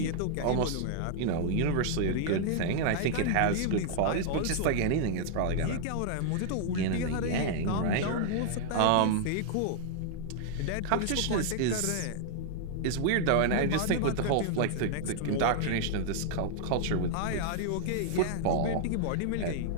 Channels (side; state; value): both; different; correlation -0.01